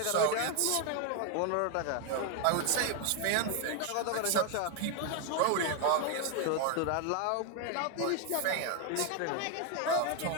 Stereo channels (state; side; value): different; both; correlation 0.01